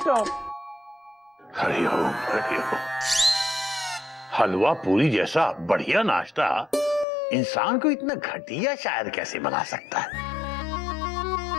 हरिओम हरिओम। हलवा पूरी जैसा बढ़िया नाश्ता इंसान को इतना घटिया शायर कैसे बना सकता है?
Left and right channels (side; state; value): right; drops out; at 7.1 s